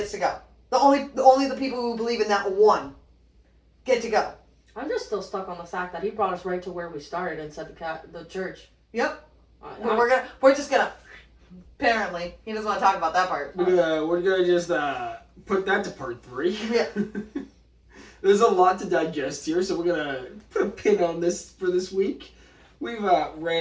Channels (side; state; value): both; identical; correlation 1.00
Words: to go. Only the people who believe in that one get to go. I'm just still stuck on the fact that he brought us right to where we started and said the church. Yep. We're just gonna. Apparently, he doesn't want to talk about that part. We're gonna just put that to part 3. Yeah. There's a lot to digest here, so we're gonna put a pin on this for this week. We've